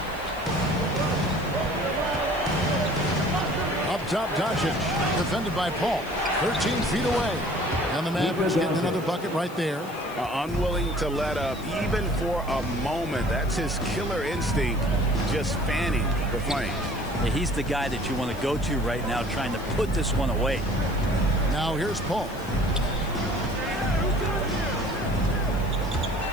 Up top, Doncic, defended by Paul. 13 feet away. And the Mavericks getting another bucket right there. Unwilling to let up even for a moment. That's his killer instinct, just fanning the flame. Yeah, he's the guy that you want to go to right now, trying to put this one away. Now here's Paul.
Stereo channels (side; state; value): left; noise; hiss, 20 dB below the sound